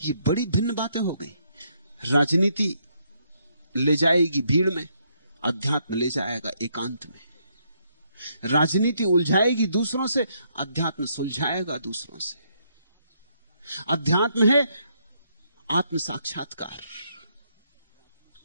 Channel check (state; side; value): inverted; both; correlation -0.73